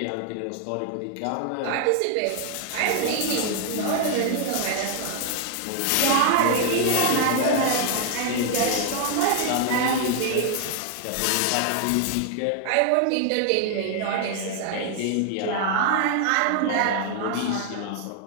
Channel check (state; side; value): different; both; correlation 0.00